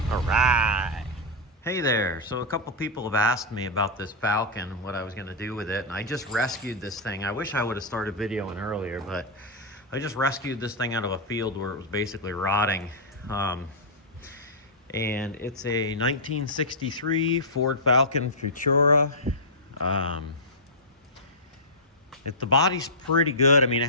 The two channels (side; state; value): both; normal; correlation -0.10